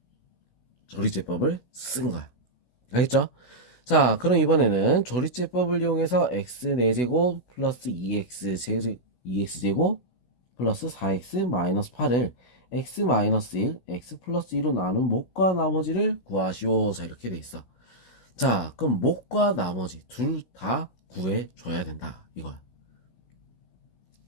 조리제법을 쓴 거야. 알겠죠? 자, 그럼 이번에는 조리제법을 이용해서 x 4제곱 플러스 2x제곱 플러스 4x 마이너스 8을 x 마이너스 1, x 플러스 2로 나눈 몫과 나머지를 구하시오. 자, 이렇게 돼 있어. 자, 그럼 몫과 나머지 둘 다 구해줘야 된다. 이거야.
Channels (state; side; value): late; right; 16 ms